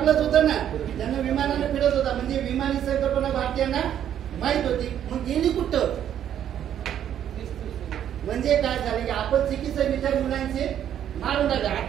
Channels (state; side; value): quieter; left; 10.1 dB